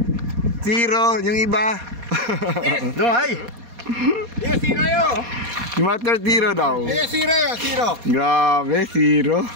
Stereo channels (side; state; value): left; late; 4.2 ms